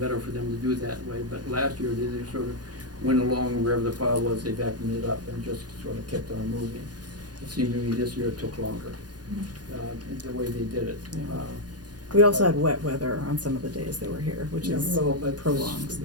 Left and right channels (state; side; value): late; left; 0.69 ms